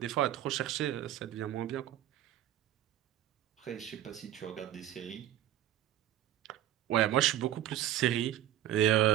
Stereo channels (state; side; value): quieter; left; 12.3 dB